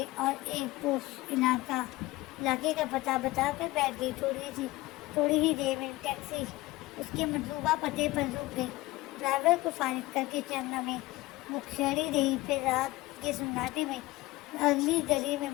اور ایک پوش علاقے کا پتہ بتا کر بیٹھ گئی۔ تھوڑی ہی دیر میں ٹیکسی اس کے مطلوبہ پتے پر رک گئی۔ ڈرائیور کو فارغ کر کے چند لمحے وہ کھڑی رہی، پھر رات کے سناٹے میں اگلی گلی میں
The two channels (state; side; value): quieter; right; 19.4 dB